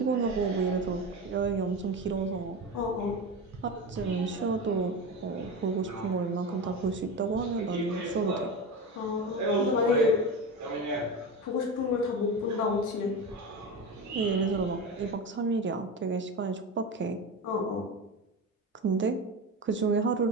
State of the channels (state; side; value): normal; both; correlation 0.23